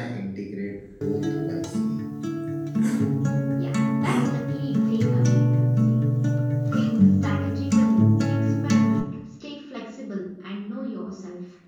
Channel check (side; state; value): both; identical; correlation 1.00